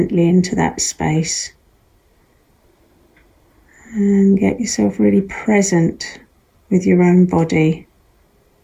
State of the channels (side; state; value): both; identical; correlation 1.00